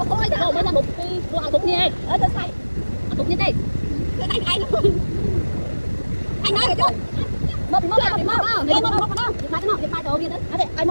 thôi mới là một cái đồ ăn tục nha ở tôi xay tục như thế cái tay ai luôn anh nói rồi chứ mốc đâu đi mai đồ đi đó ai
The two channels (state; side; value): inverted; both; correlation -1.00